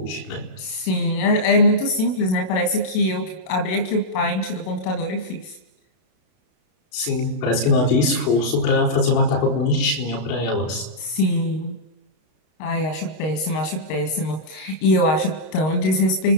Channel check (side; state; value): right; late; 32 ms